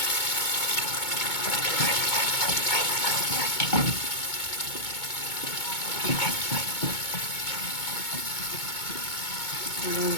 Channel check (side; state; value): right; late; 2.2 ms